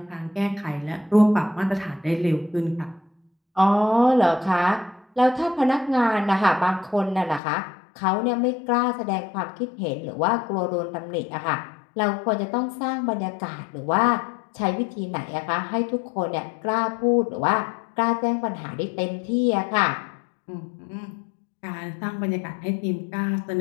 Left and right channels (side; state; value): right; drops out; at 7.4 s